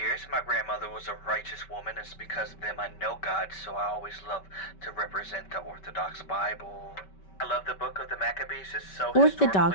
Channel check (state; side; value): late; right; 5.2 ms